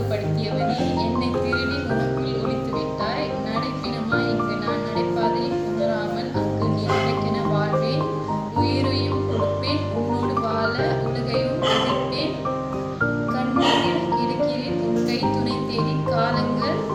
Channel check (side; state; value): both; identical; correlation 1.00